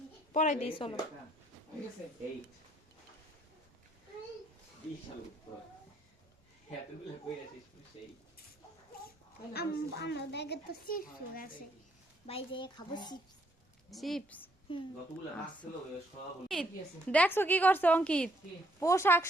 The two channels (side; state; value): both; normal; correlation 0.69